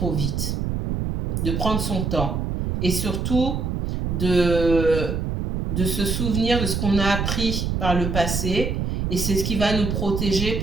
vite, de prendre son temps et surtout de se souvenir de ce qu'on a appris par le passé et c'est ce qui va nous protéger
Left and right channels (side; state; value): right; noise; rumble, 1 dB below the sound